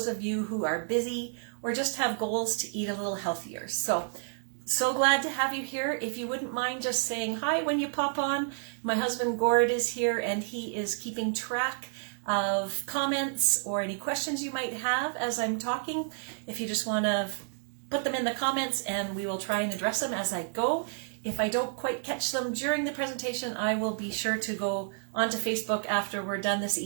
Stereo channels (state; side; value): silent; left; digital silence